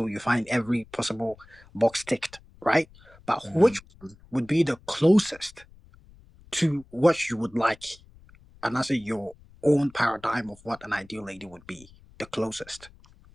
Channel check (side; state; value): left; noise; rumble, 25 dB below the sound